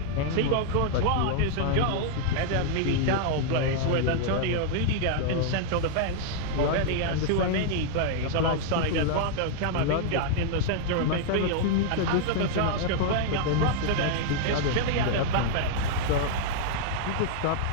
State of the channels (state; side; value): different; both; correlation -0.01